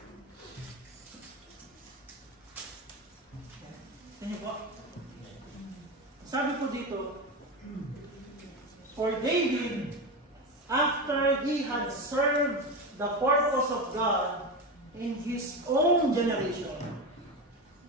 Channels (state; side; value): normal; both; correlation 0.19